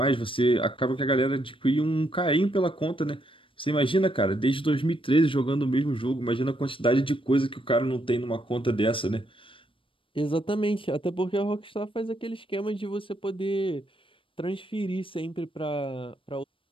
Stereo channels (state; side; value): late; right; 0.25 ms